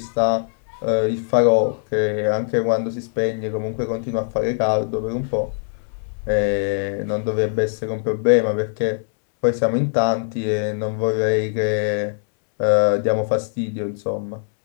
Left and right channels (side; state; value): right; silent; 65 dB below the other